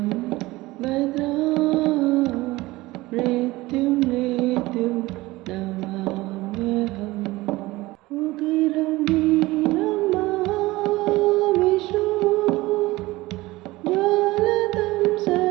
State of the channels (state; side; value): quieter; left; 19.7 dB